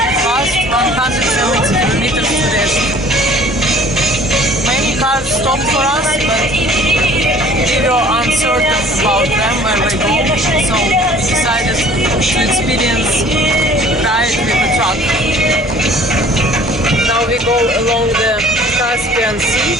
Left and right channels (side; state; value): both; normal; correlation 0.51